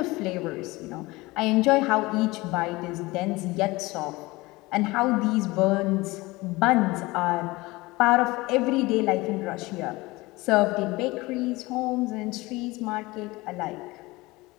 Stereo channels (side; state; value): right; quieter; 21.6 dB